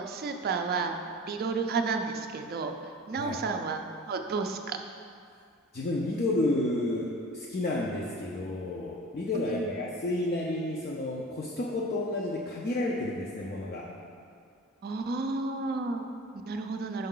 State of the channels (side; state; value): both; normal; correlation 0.39